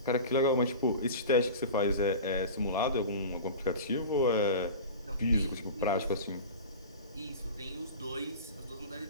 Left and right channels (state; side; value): inverted; both; correlation -0.33